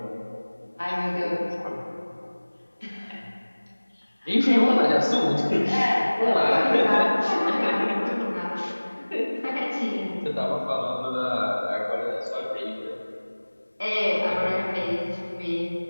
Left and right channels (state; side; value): inverted; both; correlation -1.00